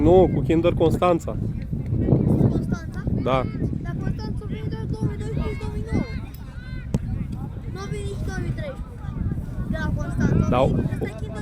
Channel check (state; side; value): identical; both; correlation 1.00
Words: cu Kinder Constanța. Constanța? Da. Dar Constanța a venit doar 2012-2009. Nu a venit nici 2013. De la Constanța. Da. Ăsta e